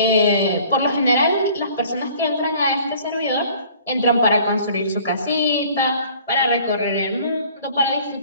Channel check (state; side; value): inverted; both; correlation -0.52